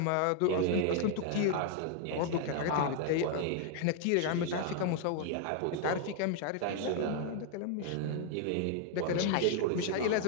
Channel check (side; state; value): both; different; correlation 0.00